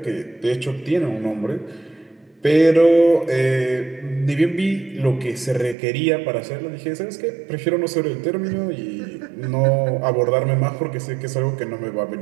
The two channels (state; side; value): drops out; left; at 5.8 s